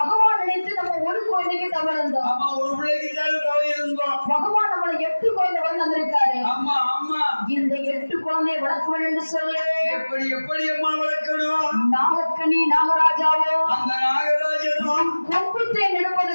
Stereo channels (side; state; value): both; inverted; correlation -1.00